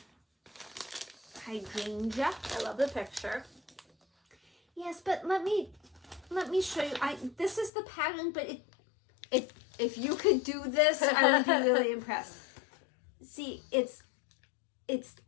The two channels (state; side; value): drops out; right; at 7.7 s